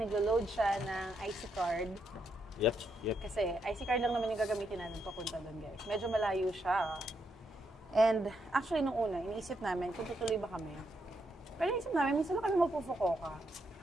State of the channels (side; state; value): both; normal; correlation 0.79